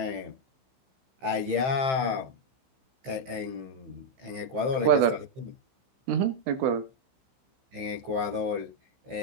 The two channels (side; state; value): left; late; 15 ms